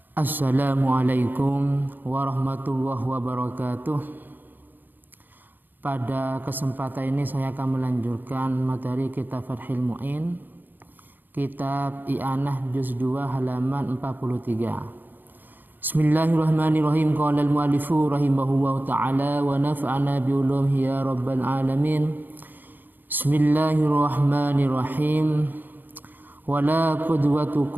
Assalamualaikum warahmatullahi wabarakatuh. Pada kesempatan ini saya akan melanjutkan materi kitab Fathul Mu'in, kitab I'anah juz 2 halaman 43. Bismillahirrahmanirrahim. Qala al-mu'allifu rahimahullahu ta'ala wa nafa'ana bi ulumihi ya rabbal alamin. Bismillahirrahmanirrahim. Wala qudwatu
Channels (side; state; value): left; late; 0.089 ms